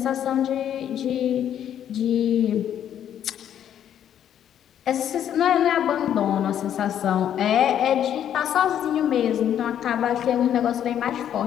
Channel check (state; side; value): quieter; right; 10.0 dB